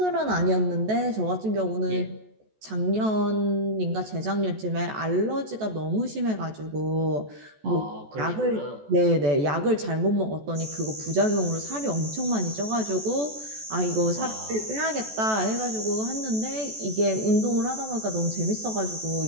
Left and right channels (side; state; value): left; late; 14 ms